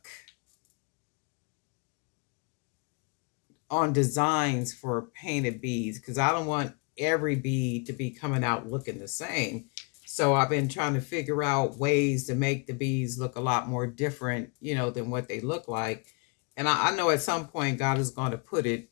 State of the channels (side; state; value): right; quieter; 33.4 dB